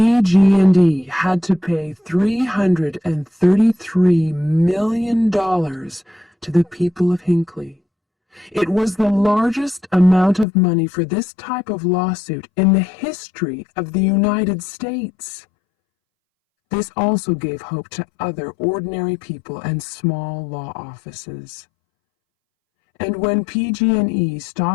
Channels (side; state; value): right; drops out; at 10.5 s